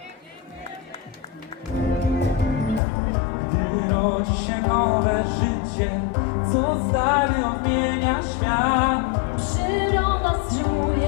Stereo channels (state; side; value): drops out; right; at 2.8 s